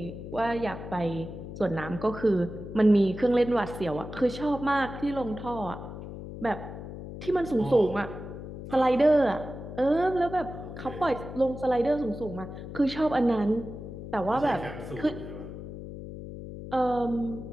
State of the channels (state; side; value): noise; left; hum, 10 dB below the sound